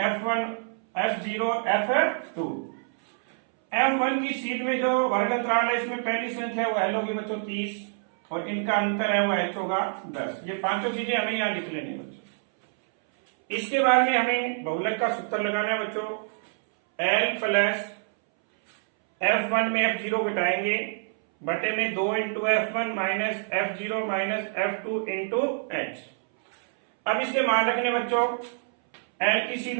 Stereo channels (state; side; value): silent; left; 61 dB below the other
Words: F1, F0, F2। F1 की सीट में जो वर्ग अंतराल है इसमें पहली संख्या वो L होगी बच्चों 30 और इनका अंतर है वो H होगा 10। ये पांचों चीजें हमें यहाँ लिख लेनी है बच्चों। इसके बाद में हमें बहुलक का सूत्र लगाना है बच्चों। L प्लस F1 में F0 घटाएंगे बटे में 2 into F1 minus F0 minus F2 into H। अब इसके मान रखने बच्चों L की